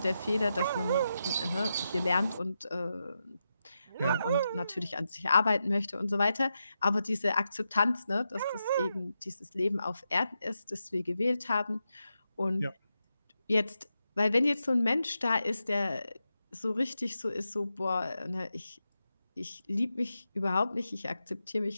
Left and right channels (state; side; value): inverted; both; correlation -0.88